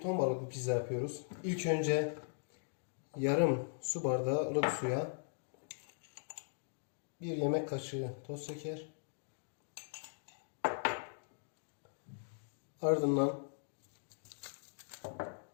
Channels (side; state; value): right; silent; digital silence